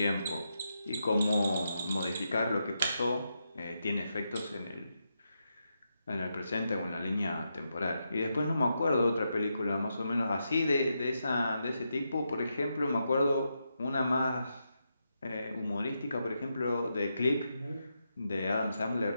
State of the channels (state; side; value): inverted; both; correlation -0.84